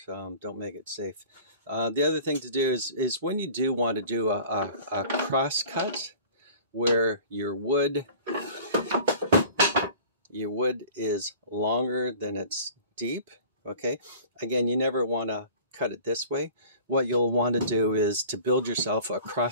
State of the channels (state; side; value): inverted; both; correlation -0.44